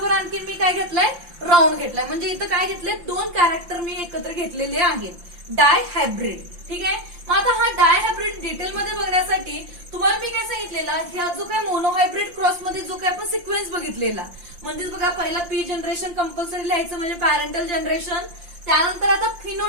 आणखी मी काय घेतलाय? राऊंड घेतलाय. म्हणजे इथं काय घेतलंय? दोन कॅरेक्टर मी एकत्र घेतलेले आहेत. डायहायब्रिड. ठीक आहे, मग आता हा डायहायब्रिड डिटेलमध्ये बघण्यासाठी तुम्हाला मी काय सांगितलेला? ह्या जो काय मोनोहायब्रिड क्रॉस मध्ये जो काय आपण सिक्वेन्स बघितलेला म्हणजेच बघा पहिला पी जनरेशन कंपल्सरी लिहायचं म्हणजे पॅरेंटल जनरेशन. त्यानंतर आता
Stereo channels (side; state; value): left; late; 5.8 ms